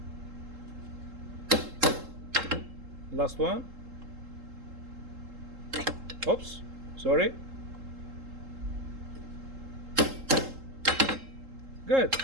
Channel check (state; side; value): late; left; 3.7 ms